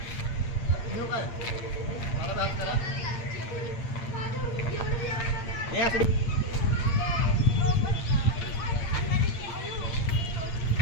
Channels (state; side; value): late; right; 8.7 ms